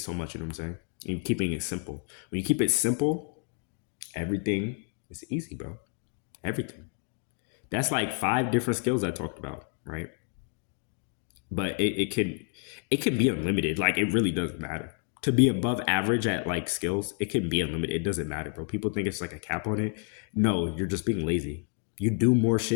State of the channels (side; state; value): right; quieter; 38.5 dB